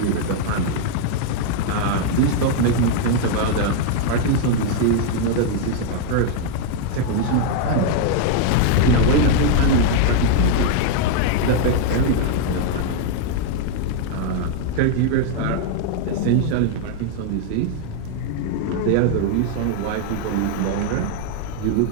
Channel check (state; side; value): different; both; correlation 0.00